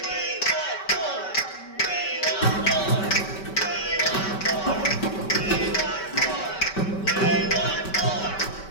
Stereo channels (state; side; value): late; right; 5.2 ms